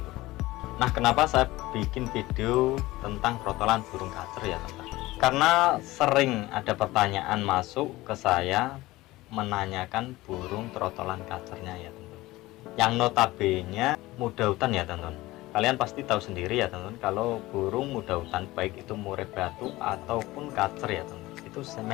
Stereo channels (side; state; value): right; quieter; 18.7 dB